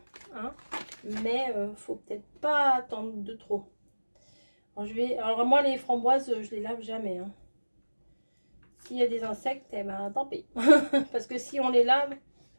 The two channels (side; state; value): both; inverted; correlation -1.00